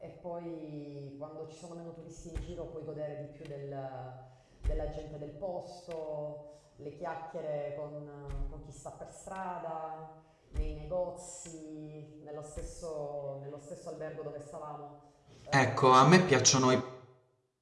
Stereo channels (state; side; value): identical; both; correlation 1.00